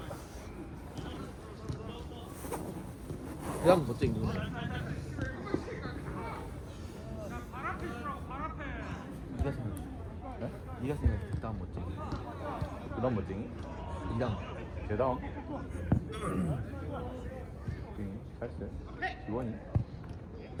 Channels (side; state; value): both; identical; correlation 1.00